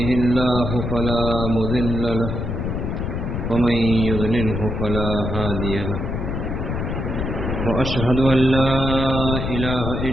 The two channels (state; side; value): noise; left; rumble, 3 dB below the sound